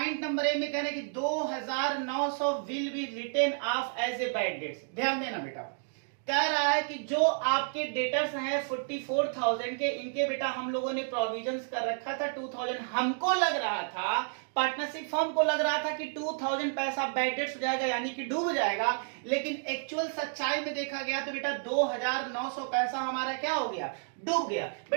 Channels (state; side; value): silent; left; digital silence